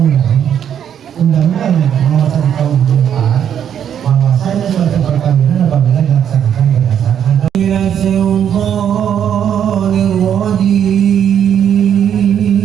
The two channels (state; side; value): quieter; left; 9.0 dB